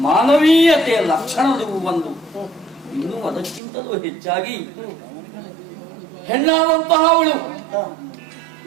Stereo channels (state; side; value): drops out; left; at 3.6 s